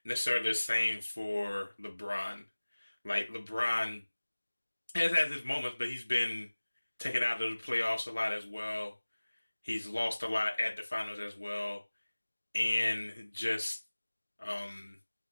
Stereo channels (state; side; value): inverted; both; correlation -1.00